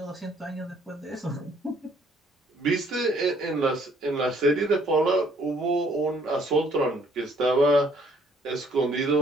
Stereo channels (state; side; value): normal; both; correlation 0.62